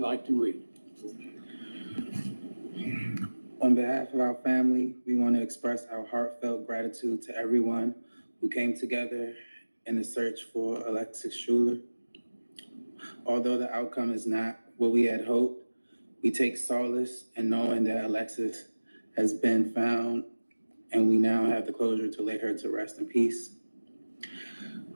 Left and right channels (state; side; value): inverted; both; correlation -1.00